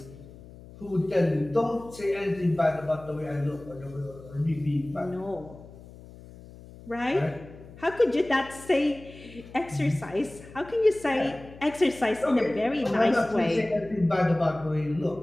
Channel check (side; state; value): left; noise; hum, 19 dB below the sound